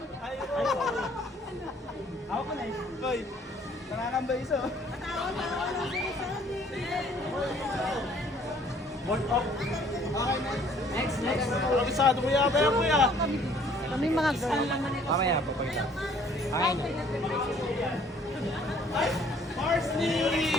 Ako pa na eh. Hoy, nakakambay iso. Worth of. Next. Kabisado mo yata yan, kuya. Kami mga girl. Mamaya po. Ay, Mark!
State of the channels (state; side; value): normal; both; correlation 0.59